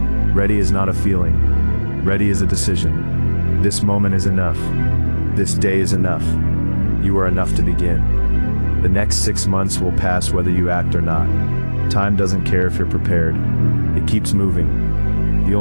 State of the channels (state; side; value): inverted; both; correlation -1.00